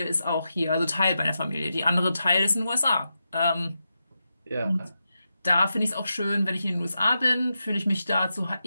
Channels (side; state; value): both; inverted; correlation -0.88